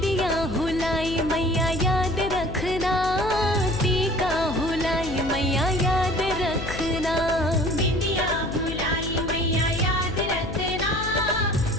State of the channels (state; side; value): noise; left; hum, 7 dB below the sound